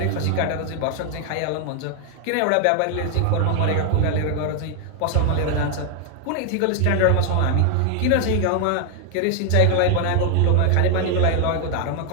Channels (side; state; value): both; different; correlation 0.00